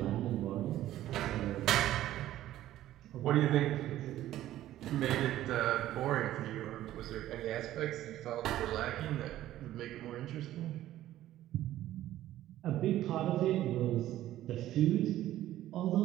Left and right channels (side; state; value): left; quieter; 13.7 dB